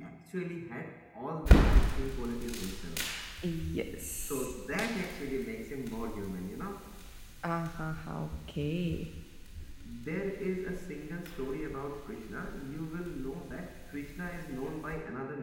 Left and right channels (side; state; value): both; identical; correlation 1.00